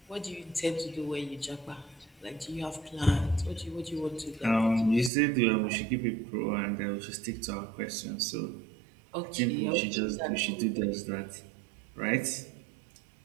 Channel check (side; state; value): left; drops out; at 5.1 s